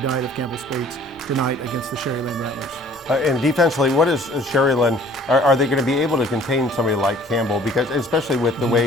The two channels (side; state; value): both; normal; correlation 0.54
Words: of Campbell Spates tonight against the Sherryland Rattlers. And defensively, what is Sherry-Lynn? Are they going to be able to contain somebody like Campbell? Because especially with the